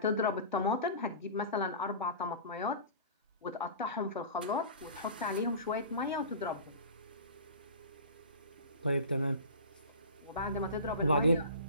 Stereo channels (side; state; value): both; inverted; correlation -0.36